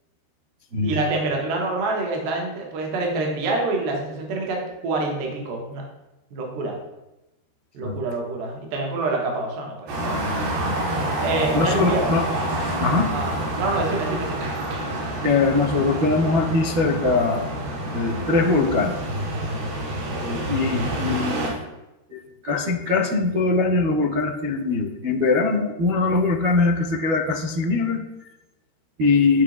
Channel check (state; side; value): late; left; 13 ms